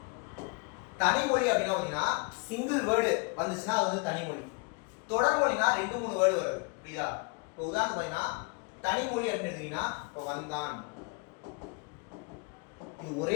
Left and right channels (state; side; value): quieter; right; 31.1 dB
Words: தனிமொழி அப்படின்னா பாத்தீங்கன்னா சிங்கிள் வேர்டு வந்துச்சுன்னா அது வந்து தனிமொழி. தொடர்மொழினா 2-3 வேர்டு வருது. புரியுதா? இப்போ உதாரணத்துக்கு பாத்தீங்கன்னா தனிமொழி அப்படின்னு எடுத்தீங்கன்னா இப்போ வந்தான், இது